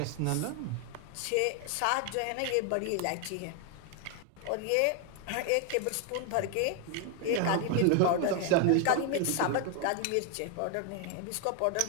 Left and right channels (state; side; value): different; both; correlation 0.00